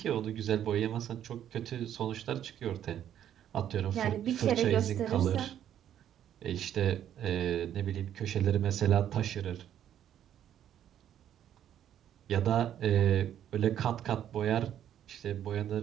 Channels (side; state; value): left; quieter; 10.5 dB